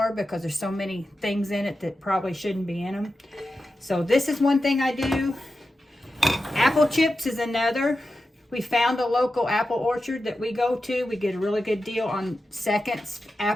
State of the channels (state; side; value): normal; both; correlation 0.91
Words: because there's so many things in it that probably shouldn't be in them. So this is one thing I do. Apple chips is another. We found a local apple orchard that we go to. We get a really good deal on seconds